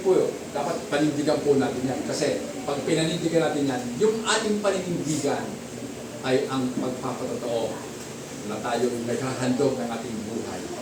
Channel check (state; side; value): identical; both; correlation 1.00